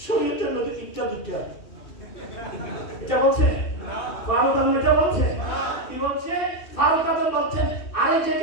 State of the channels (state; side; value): late; right; 2.6 ms